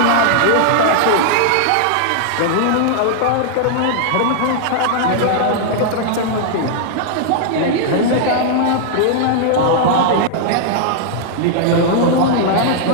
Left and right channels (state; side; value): different; both; correlation -0.01